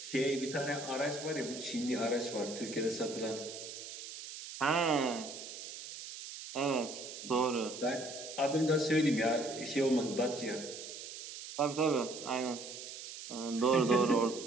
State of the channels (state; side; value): noise; right; hiss, 10 dB below the sound